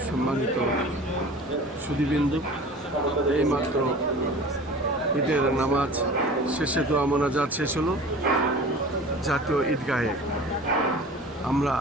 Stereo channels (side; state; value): both; normal; correlation 0.40